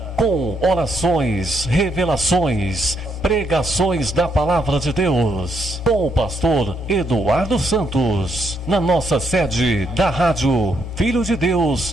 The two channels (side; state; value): both; normal; correlation 0.75